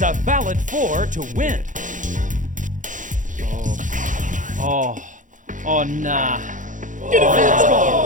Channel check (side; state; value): left; late; 0.37 ms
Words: a valid 4 to win. Oh. Oh, nah. Red